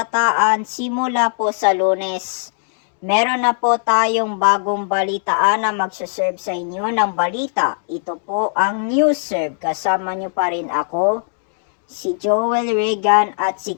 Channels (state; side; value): silent; right; digital silence